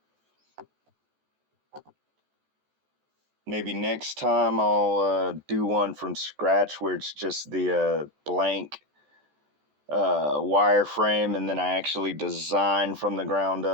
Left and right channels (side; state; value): left; late; 14 ms